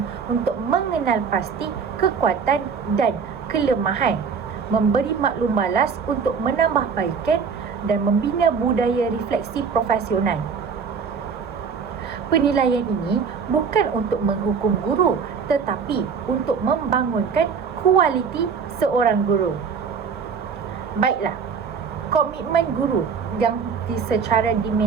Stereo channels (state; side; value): quieter; left; 6.0 dB